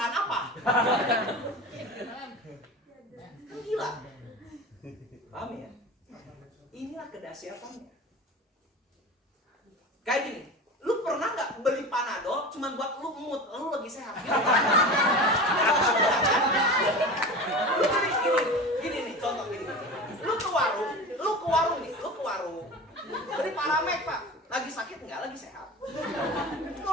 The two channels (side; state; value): both; normal; correlation 0.31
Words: apa? Kan gila. Paham ya? kedahsyatannya. Kayak gini, lu pernah nggak beli Panadol cuma buat lu mood, lu lagi sehat? Lu gini nih, contoh gini. Lu ke warung beli Paramek Pak, lagi sakit nggak, lagi sehat?